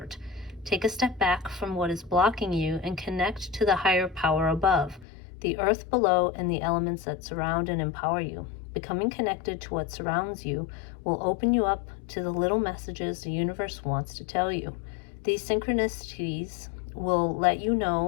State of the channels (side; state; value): right; drops out; at 5.1 s